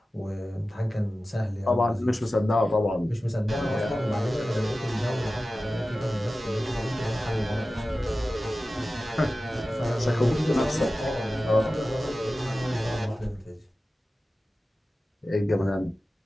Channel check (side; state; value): both; normal; correlation 0.95